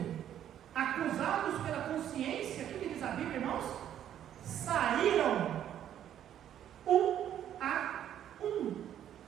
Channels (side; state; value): left; quieter; 10.6 dB